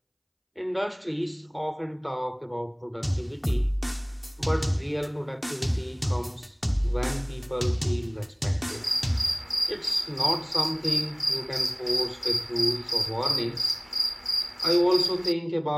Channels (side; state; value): both; identical; correlation 1.00